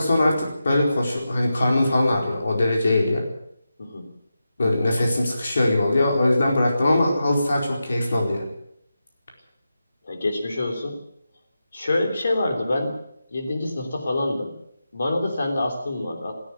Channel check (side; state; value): both; inverted; correlation -0.90